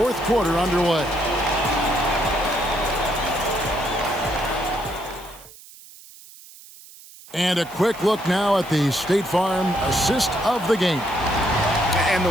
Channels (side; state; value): right; noise; hiss, 20 dB below the sound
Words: quarter underway. And a quick look now at the State Farm assist of the game. And the